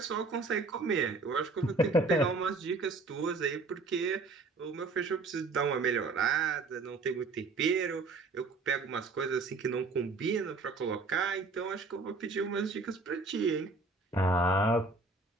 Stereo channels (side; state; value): left; quieter; 3.7 dB